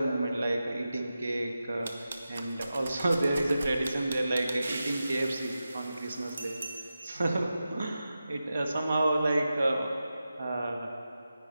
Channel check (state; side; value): inverted; both; correlation -0.92